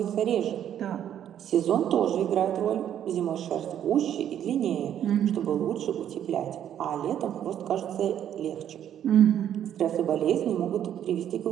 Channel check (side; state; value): left; quieter; 10.2 dB